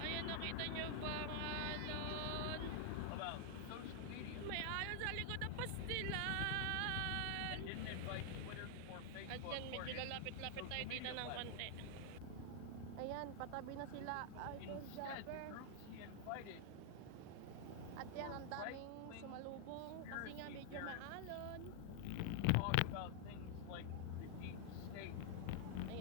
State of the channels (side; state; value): both; different; correlation 0.00